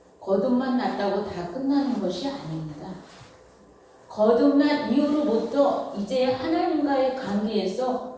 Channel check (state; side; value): identical; both; correlation 1.00